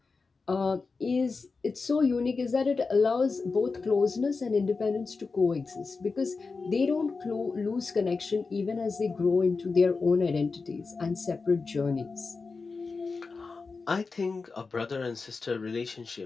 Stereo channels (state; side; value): quieter; right; 4.4 dB